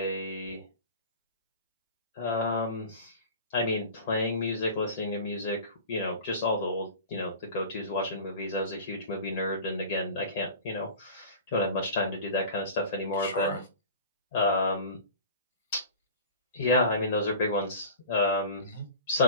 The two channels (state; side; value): inverted; both; correlation -0.37